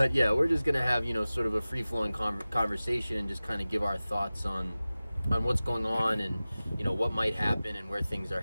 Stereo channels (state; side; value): inverted; both; correlation -0.97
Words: just going to have, sort of a free-flowing conversation and just kind of give our thoughts on what's going on and, what might happen and where things are